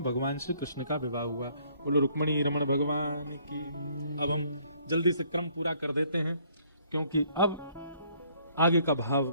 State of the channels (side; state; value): both; inverted; correlation -0.64